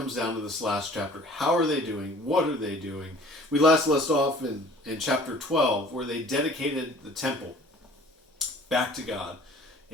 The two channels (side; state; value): both; normal; correlation 0.50